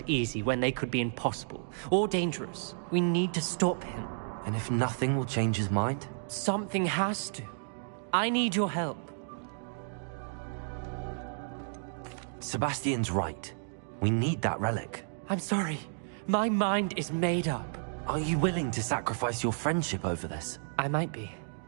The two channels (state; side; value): silent; left; digital silence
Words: easy when they could be impossible or dangerous. We need to stop him. And if nothing will change his mind? Something has to. I need your help. Sebastian's right. We need that relic. I'm sorry. My mind is made up. Are you willing to sacrifice your friendship over this? I might be.